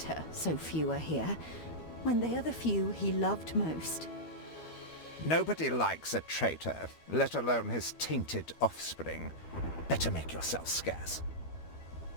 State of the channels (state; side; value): late; right; 12 ms